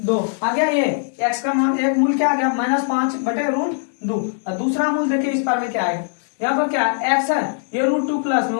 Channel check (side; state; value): right; silent; 65 dB below the other